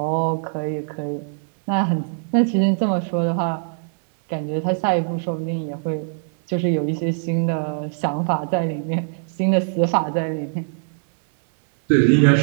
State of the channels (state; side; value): silent; left; 63 dB below the other